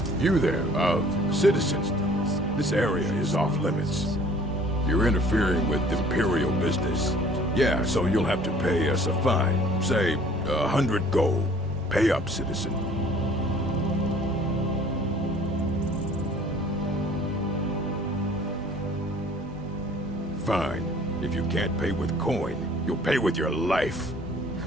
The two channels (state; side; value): normal; both; correlation 0.53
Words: You there, citizens. This area is off limits. You're interfering with Imperial business. Yeah, so you'll have to pay us a fine. Say, 100 gold. Pay up, citizen. Fine. If you can't pay with coin, you'll pay with your life.